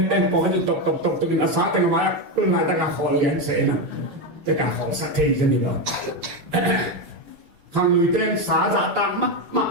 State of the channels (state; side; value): late; left; 6.7 ms